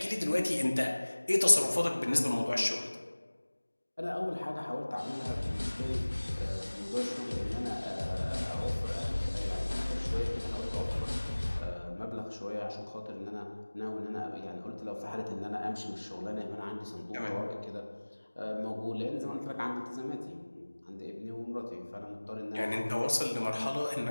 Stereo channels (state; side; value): inverted; both; correlation -1.00